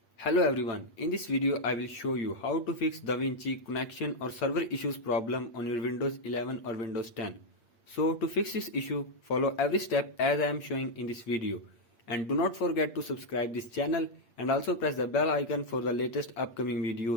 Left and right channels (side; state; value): right; late; 8.6 ms